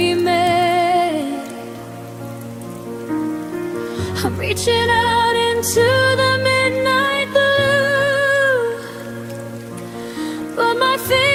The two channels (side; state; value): both; identical; correlation 1.00